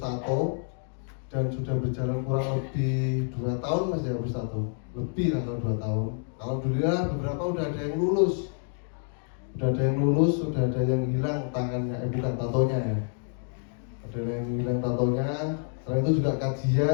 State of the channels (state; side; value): silent; right; 59 dB below the other